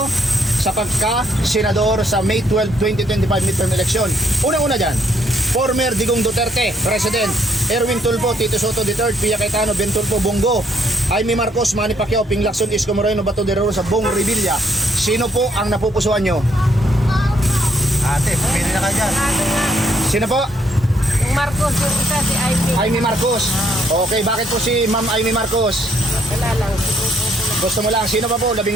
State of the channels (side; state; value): both; normal; correlation 0.71